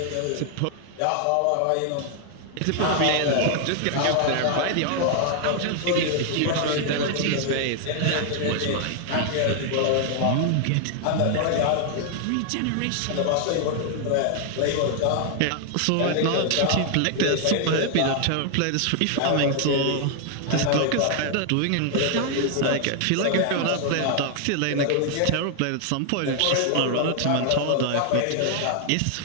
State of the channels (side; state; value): both; different; correlation 0.00